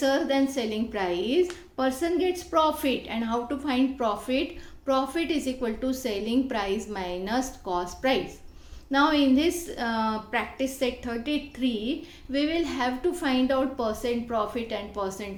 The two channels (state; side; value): identical; both; correlation 1.00